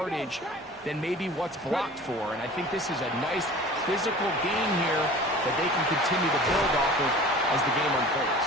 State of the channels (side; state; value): both; normal; correlation 0.42